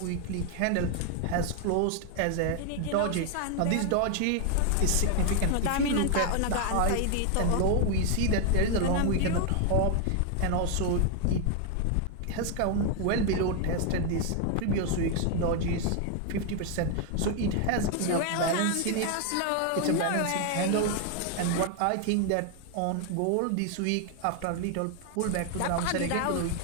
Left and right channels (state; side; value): different; both; correlation 0.01